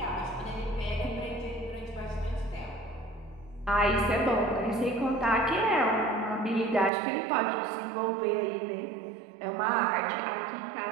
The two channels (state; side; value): drops out; left; at 6.9 s